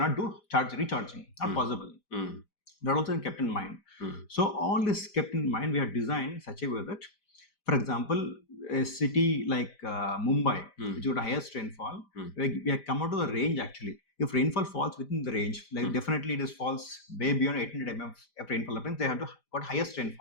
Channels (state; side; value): late; right; 5.0 ms